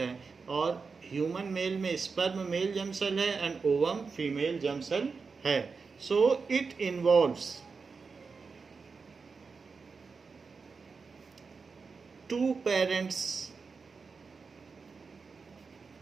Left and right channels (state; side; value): quieter; left; 4.9 dB